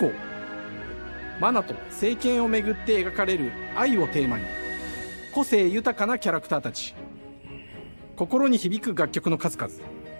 マナと聖剣をめぐって描かれる愛をテーマに個性豊かなキャラクターたち、心に響く楽曲の数々、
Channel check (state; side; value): inverted; both; correlation -1.00